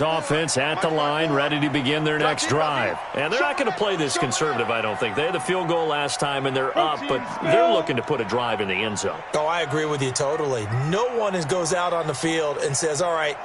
offense at the line, ready to begin their next drive. And they're not going to play this conservative, I don't think. They had the field goal last time, and they're up, but they're looking to put a drive in the end zone. Oh, I agree with you totally. No one goes out on the field and says, all right,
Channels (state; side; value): identical; both; correlation 1.00